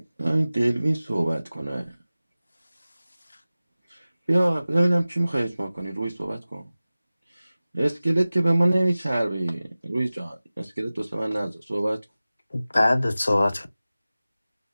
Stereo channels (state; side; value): inverted; both; correlation -0.97